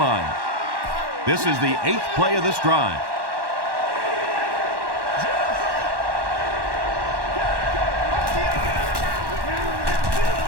This is the 8th play of this drive.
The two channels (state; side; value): late; left; 1.1 ms